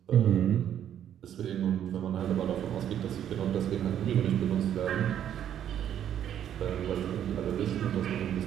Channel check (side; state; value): left; quieter; 10.1 dB